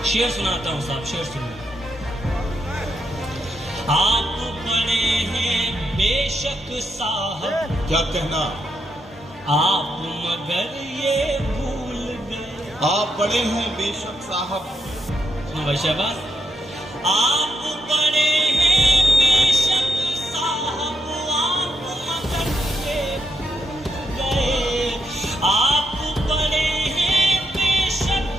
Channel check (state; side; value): normal; both; correlation 0.81